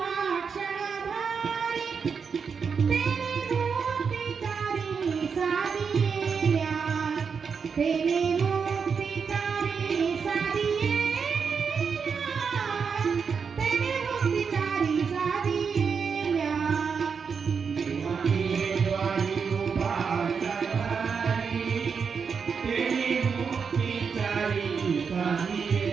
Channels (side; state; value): left; quieter; 6.0 dB